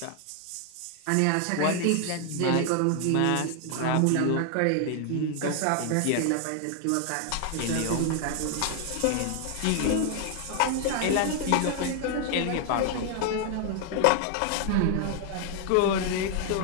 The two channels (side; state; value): both; different; correlation 0.00